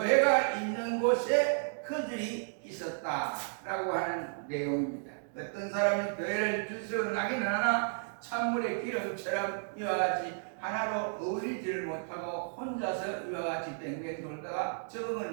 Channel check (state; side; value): silent; left; digital silence